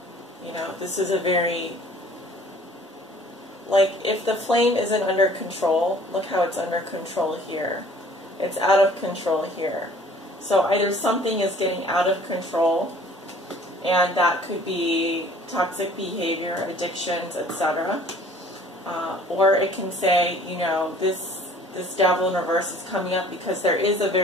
You know, this is a very, like, if the flame isn't under control, look how it's under control here. It's out of control here. So either something is getting out of control, and that could be toxic behavior, addictions, etc. Or it can say, you know, this Devil in reverse is coming up because there is a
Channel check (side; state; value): both; normal; correlation 0.52